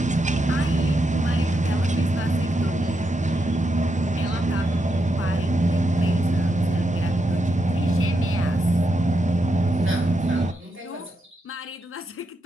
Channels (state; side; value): normal; both; correlation 0.83